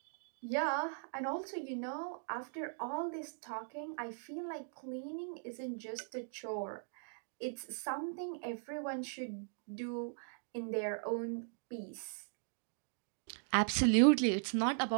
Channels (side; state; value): left; silent; digital silence